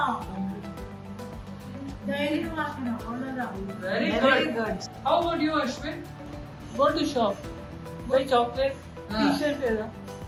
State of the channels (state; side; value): identical; both; correlation 1.00